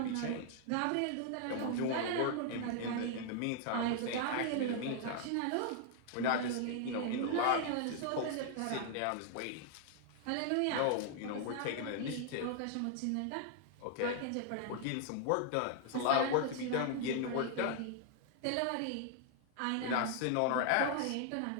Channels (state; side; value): different; both; correlation 0.00